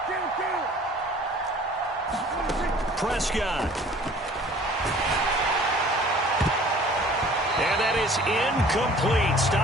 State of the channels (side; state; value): both; normal; correlation 0.51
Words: Prescott. And that is incomplete,